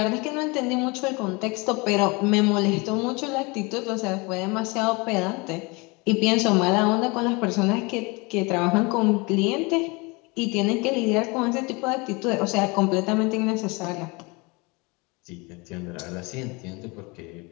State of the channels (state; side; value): quieter; right; 27.2 dB